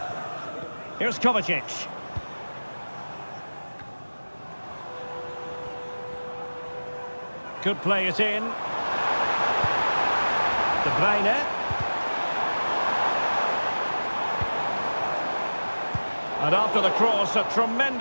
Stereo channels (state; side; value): inverted; both; correlation -1.00